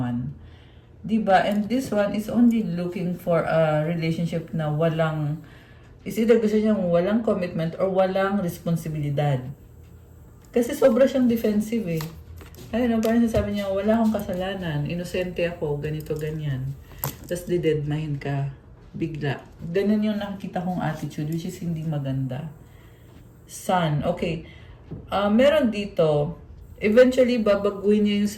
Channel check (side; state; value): both; identical; correlation 1.00